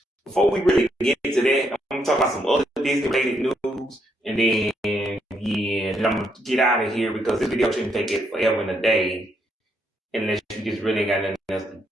before we really get into that, I'm gonna talk about some other Disney related news, and then yeah, then I'm gonna get out of here because this video shouldn't take it forever and a day unless you just really got nothing else to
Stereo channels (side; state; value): both; normal; correlation 0.76